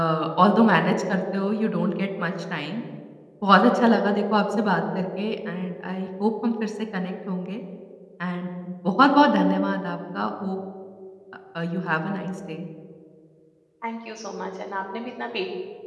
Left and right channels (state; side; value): identical; both; correlation 1.00